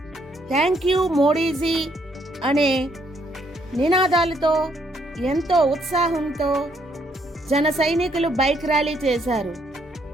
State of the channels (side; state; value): both; normal; correlation 0.70